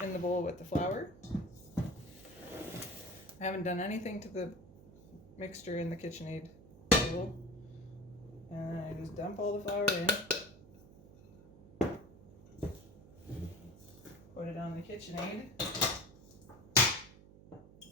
in the bowl with the flour. I haven't done anything to the mixture in the KitchenAid bowl. And I just dump all the flour in. Put it on the KitchenAid.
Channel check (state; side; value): noise; right; hum, 20 dB below the sound